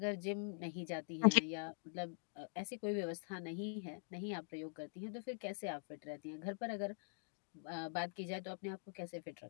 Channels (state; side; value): silent; right; digital silence